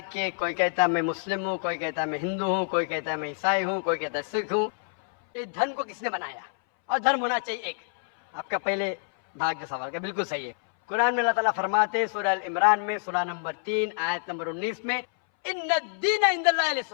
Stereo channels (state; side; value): silent; right; 60 dB below the other